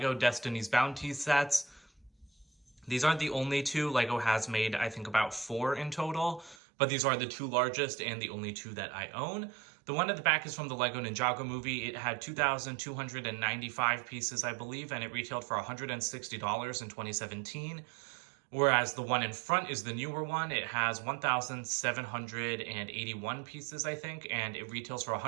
Destiny's Bounty sets. These aren't the only two. LEGO has made, I think, about 4 in total, but these are the two largest and the only two that I own. The one at the back is from the LEGO Ninjago Movie. It had 2,295 pieces, I believe, and it retailed for $160 in 2017. Whereas the one in front is the newer one. It has 1,781 pieces, I think, and it retails for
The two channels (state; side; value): drops out; left; at 6.6 s